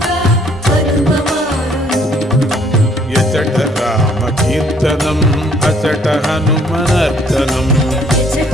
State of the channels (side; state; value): both; normal; correlation 0.63